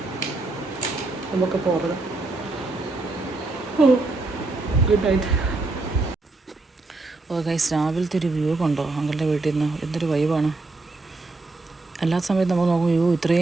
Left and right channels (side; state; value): left; quieter; 3.3 dB